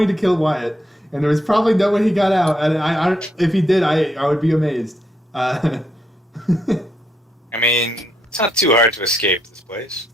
to kill Wyatt, and there was probably no way he got out. And if he did, I would be amazed. I mean, it's not too hard to escape this place.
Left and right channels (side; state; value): both; normal; correlation 0.77